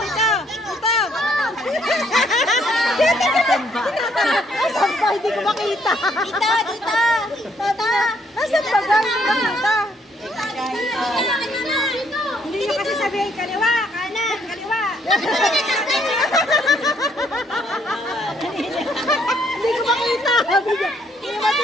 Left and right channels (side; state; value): both; normal; correlation 0.69